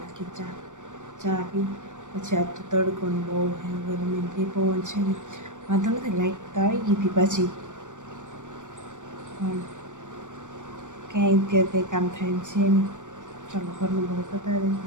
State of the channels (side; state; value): left; late; 0.86 ms